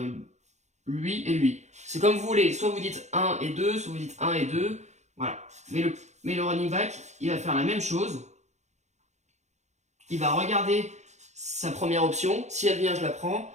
lui et lui. C'est comme vous voulez, soit vous dites 1 et 2, soit vous dites 1 et 2, voilà. Mais le running back, il va faire la même chose. Il va regarder sa première option, si elle vient, je la prends.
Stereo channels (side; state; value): left; late; 0.33 ms